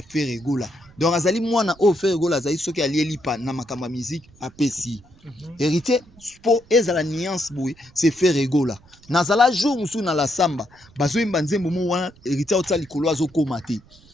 fait régola. Donc azali mwana o fait régola azali soki alieli pa na makamba musique apesi. Héritier po ezala nuance boy c'est fait régola. Nazala jour musu na la samba bazo imba nzembo mo wana héritier otsa likolo azokoma te.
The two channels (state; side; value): noise; right; rumble, 27 dB below the sound